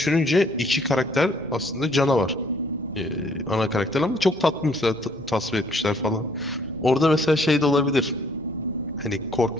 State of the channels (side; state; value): both; normal; correlation 0.63